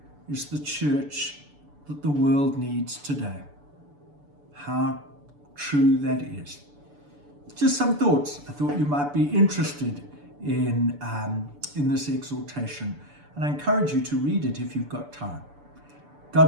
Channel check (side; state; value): left; late; 6.9 ms